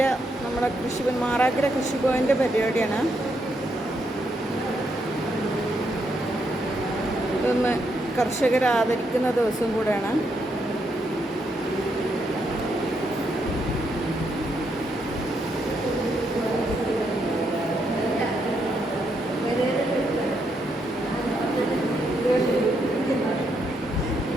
നമ്മുടെ മാറാക്കര കൃഷിഭവൻ്റെ പരിപാടിയാണ്. ഇതൊന്ന് കർഷകരെ ആദരിക്കുന്ന ദിവസം കൂടെയാണ്.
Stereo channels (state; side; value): normal; both; correlation 0.78